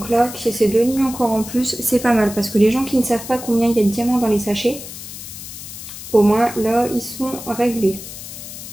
là, qu'il y ait ces deux lignes encore en plus, c'est pas mal. Parce que les gens qui ne savent pas combien il y a de diamants dans les sachets, au moins là, ils sont réglés.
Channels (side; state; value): left; noise; hiss, 12 dB below the sound